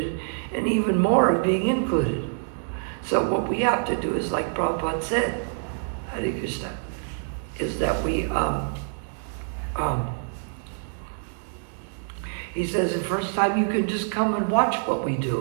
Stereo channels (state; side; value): silent; left; digital silence